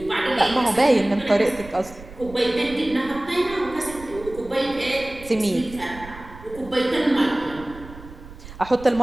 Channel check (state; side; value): noise; right; rumble, 17 dB below the sound